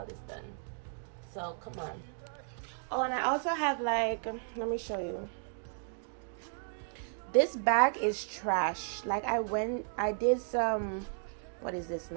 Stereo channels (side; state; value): left; silent; digital silence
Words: this done. So come on. Oh, and I also have let me show you. This bag is trash. I did some, what is this